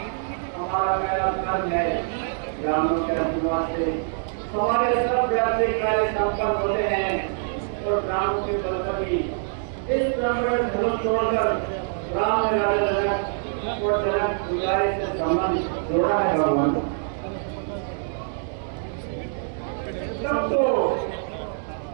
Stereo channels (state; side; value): silent; left; digital silence